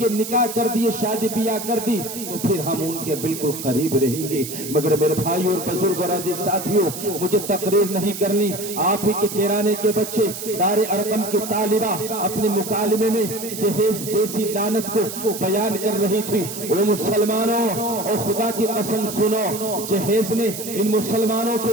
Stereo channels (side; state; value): right; noise; hiss, 8 dB below the sound